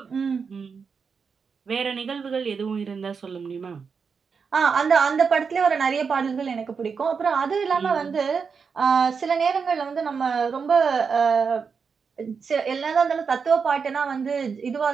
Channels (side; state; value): left; quieter; 5.7 dB